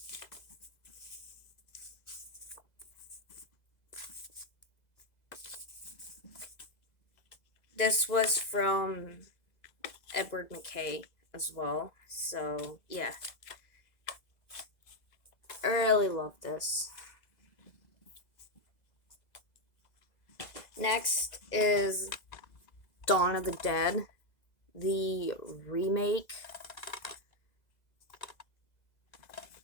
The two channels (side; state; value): right; late; 2.0 ms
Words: This was from Edward McKay as well. So, yeah. I really love this. Next is Dawn of the Dead, the remake.